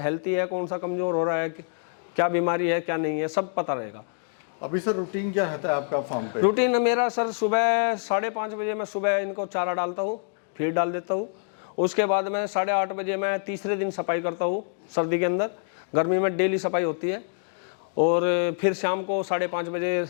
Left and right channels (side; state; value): right; silent; digital silence